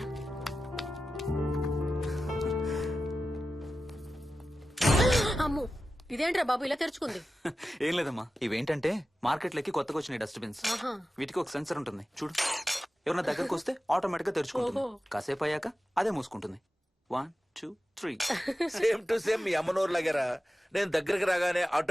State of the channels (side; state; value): both; normal; correlation 0.93